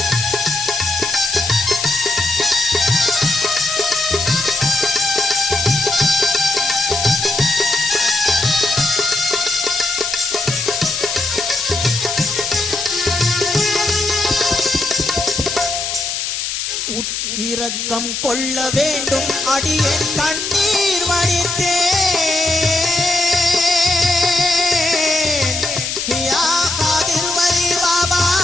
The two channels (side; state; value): left; noise; hiss, 3 dB below the sound